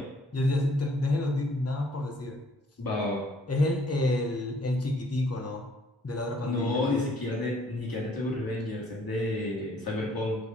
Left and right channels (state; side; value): normal; both; correlation 0.63